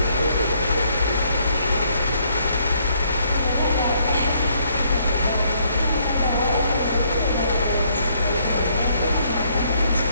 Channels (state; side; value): inverted; both; correlation -0.69